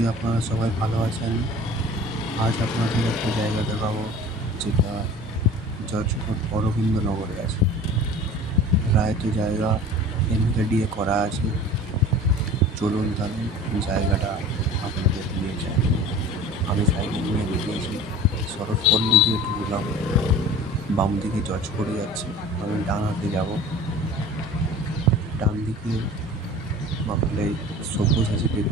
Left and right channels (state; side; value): normal; both; correlation 0.41